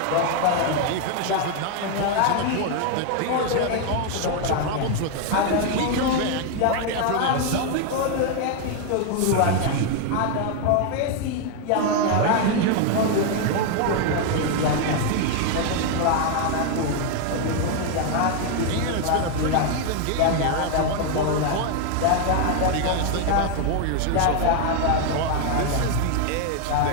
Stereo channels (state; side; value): different; both; correlation 0.01